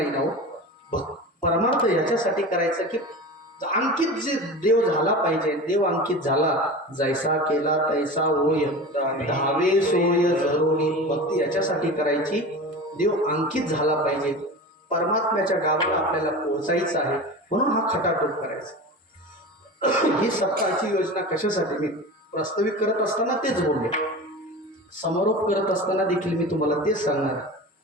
ना हो. परमार्थ याच्यासाठी करायचं की अंकित जे देव झाला पाहिजे. देव अंकित झाला जैसा केला तैसा होय धावे सोय जरोनी. भक्ती याच्यासाठी करायची देव अंकित झाला पाहिजे. परमात्म्याच्या गावाला आपल्याला पोहोचायचं आहे म्हणून हा खटाटोप करायचा. ही सप्ताहाची योजना कशासाठी मी प्रस्तावित करत असताना तेच बोलले. समारोप करत असताना देखील मी तुम्हाला तेच सांगणार.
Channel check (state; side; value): normal; both; correlation 0.31